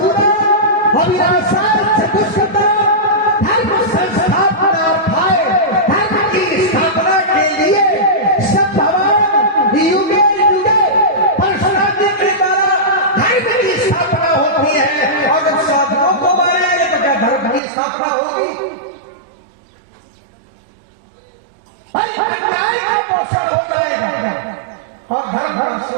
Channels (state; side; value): drops out; left; at 17.6 s